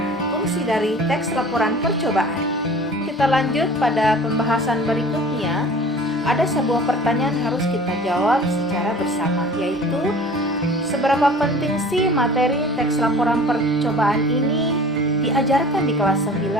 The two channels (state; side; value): normal; both; correlation 0.44